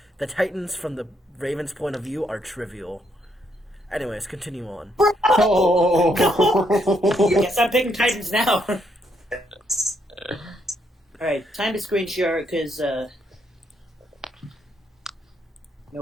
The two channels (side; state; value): both; normal; correlation 0.74